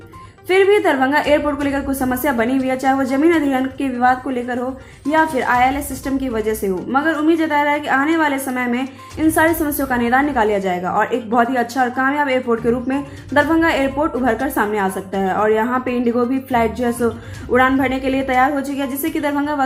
फिर भी दरभंगा एयरपोर्ट को लेकर कुछ समस्या बनी हुई है, चाहे वो जमीन अधिग्रहण के विवाद को लेकर हो या फिर ILS सिस्टम की वजह से हो, मगर उम्मीद जताया रहा है कि आने वाले समय में इन सारी समस्याओं का निदान निकाल लिया जाएगा और एक बहुत ही अच्छा और कामयाब एयरपोर्ट के रूप में दरभंगा एयरपोर्ट उभर कर सामने आ सकता है। और यहाँ पे इंडिगो भी फ्लाइट जो है सो उड़ान भरने के लिए तैयार हो चुकी है, जिससे कि दरभंगा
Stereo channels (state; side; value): identical; both; correlation 1.00